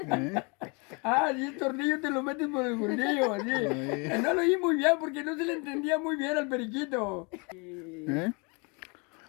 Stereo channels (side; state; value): right; quieter; 31.5 dB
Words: ¿Eh? Ah, y el tornillo te lo metes por el fundillo, así. Oye. No lo oí muy bien porque no se le entendía muy bien al periquito. ¿Eh?